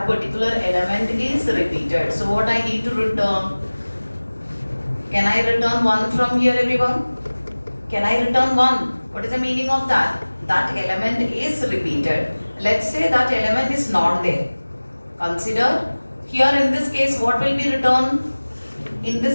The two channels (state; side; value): inverted; both; correlation -1.00